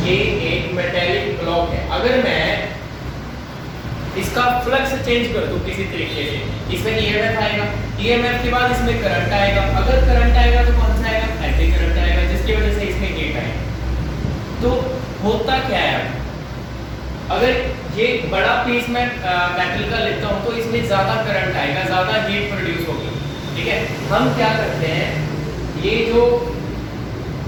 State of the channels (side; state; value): both; identical; correlation 1.00